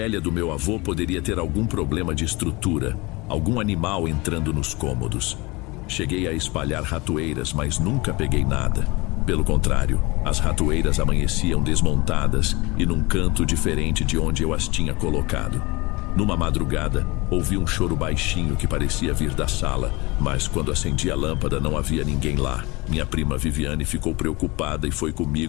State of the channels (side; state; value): right; quieter; 24.2 dB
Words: do meu avô poderia ter algum problema de estrutura, algum animal entrando nos cômodos. Cheguei a espalhar ratoeiras, mas nunca peguei nada. Pelo contrário, as ratoeiras amanheciam desmontadas e num canto diferente de onde eu as tinha colocado. Numa madrugada, ouvi um choro baixinho que parecia vir da sala, mas quando acendi a lâmpada não havia ninguém lá. Minha prima Viviane ficou preocupada e foi